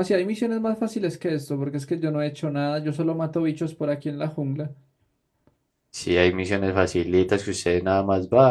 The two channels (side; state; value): both; identical; correlation 1.00